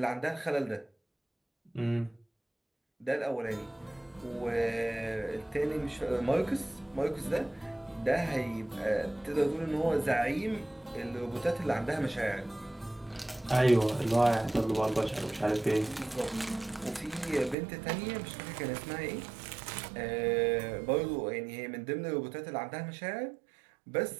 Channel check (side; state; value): left; drops out; at 17.6 s